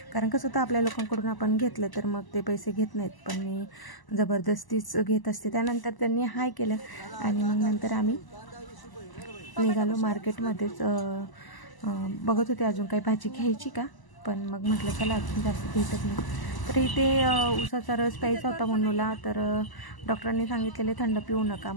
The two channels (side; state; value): right; late; 1.0 ms